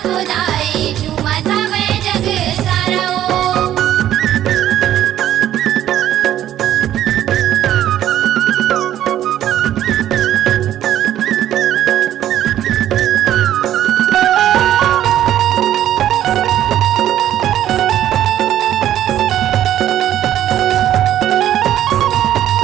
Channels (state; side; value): quieter; left; 11.9 dB